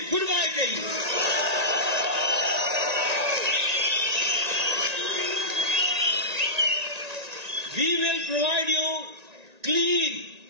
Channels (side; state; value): left; late; 1.9 ms